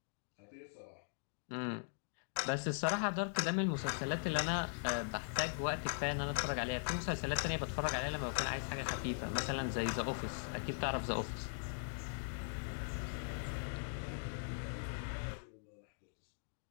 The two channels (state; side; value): silent; right; digital silence